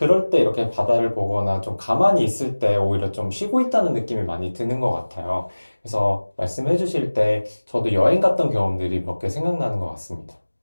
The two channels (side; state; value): both; inverted; correlation -1.00